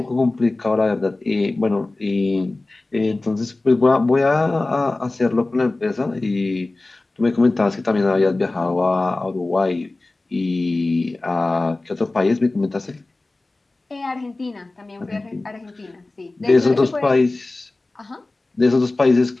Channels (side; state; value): right; quieter; 3.1 dB